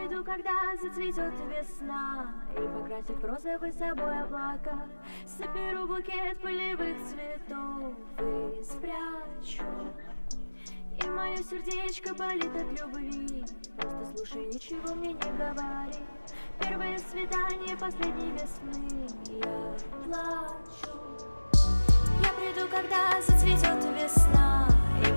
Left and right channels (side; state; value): both; inverted; correlation -1.00